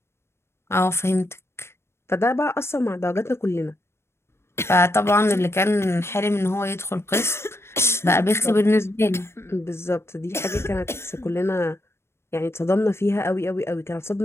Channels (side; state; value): right; late; 0.12 ms